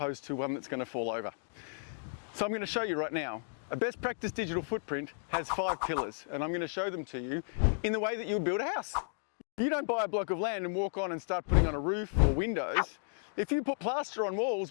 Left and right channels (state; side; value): silent; right; digital silence